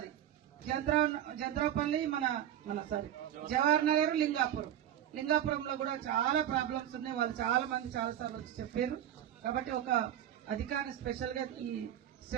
జంద్రాపల్లి, మన జవహర్ నగర్, లింగాపురంలో కూడా చాలా ప్రాబ్లమ్స్ ఉన్నాయి. వాళ్ళు చాలా మంది చాలా సార్లు వచ్చి చెప్పారు. కాబట్టి ఒక అధికారిని స్పెషల్ గా ఈ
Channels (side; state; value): left; quieter; 11.1 dB